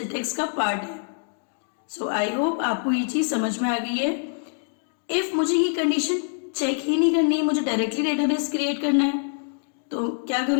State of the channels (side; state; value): right; silent; digital silence